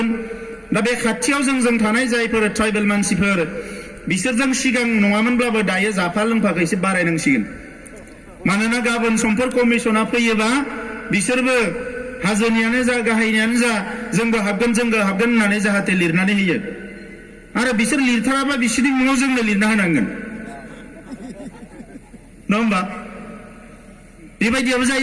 दा बे खाथियाव जों थानाय जायफोर ट्राइबेल मानसिफोर बिसोरजों सिगां नङामोनब्लाबो दायो जाफा लोंफाखौ एसे बारायनांसिगोन मानोना गाबोन समफोर कमिसना फैयोबा बिसोरबो हाजोनियानो जा गाहायनियानो जा जोंबो हाबगोन होननानै जाहाथे लिरनानै होयो आरो बिसोर लिरथाराबा बिसोरनि मुङाव जोंनो लिरना होनांगोन नङा होमबा बेबायदियाबो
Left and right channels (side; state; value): both; identical; correlation 1.00